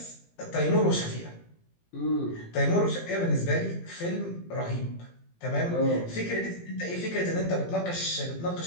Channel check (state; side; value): late; right; 17 ms